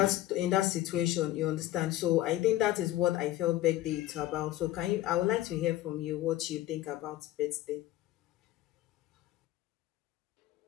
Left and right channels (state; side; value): quieter; right; 15.1 dB